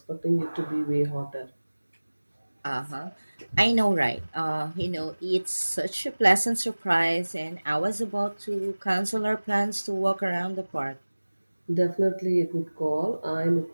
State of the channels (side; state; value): both; inverted; correlation -1.00